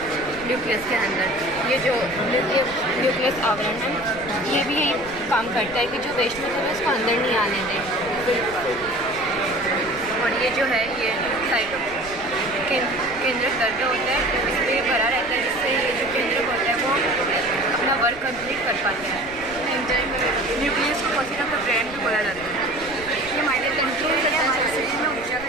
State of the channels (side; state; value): right; noise; rumble, 19 dB below the sound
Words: न्यूक्लियस के अंदर ये जो न्यूक्लियस आवरण है ये भी यही काम करता है कि जो वेस्ट मटेरियल है उसको अंदर नहीं आने दें। और ये जो है ये साइटो केंद्र द्रव्य होता है, इस पर ये भरा रहता है जिससे ये जो केंद्र होता है वो अपना वर्क कंप्लीट कर पाते हैं। न्यूक्लियस को पसीना का ब्रेन भी बोला जाता है। ये हमारे कंट्रोल करता है हमारे शरीर में ऊर्जा का।